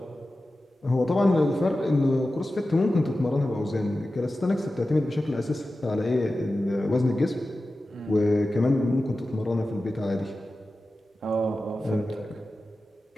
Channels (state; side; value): normal; both; correlation 0.94